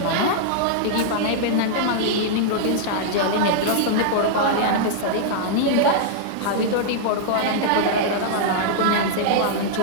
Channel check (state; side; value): different; both; correlation -0.01